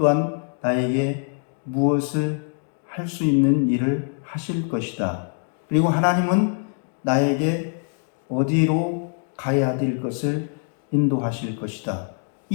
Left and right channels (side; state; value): right; silent; 55 dB below the other